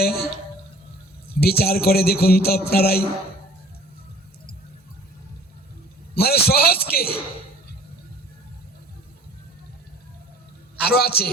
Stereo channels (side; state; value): both; normal; correlation 0.49